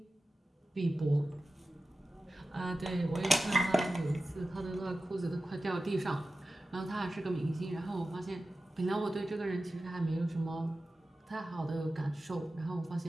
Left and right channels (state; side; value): normal; both; correlation 0.94